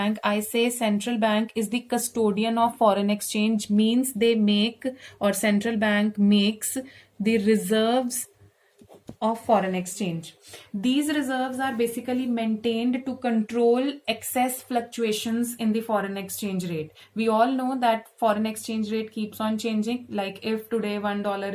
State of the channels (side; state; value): both; identical; correlation 1.00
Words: I say central bank is the custodian of foreign exchange, means they make, or central bank makes, the reserves of foreign exchange. These reserves are basically maintained to control excess fluctuations in the foreign exchange rate. We all know that foreign exchange rate keeps on changing. Like if today $1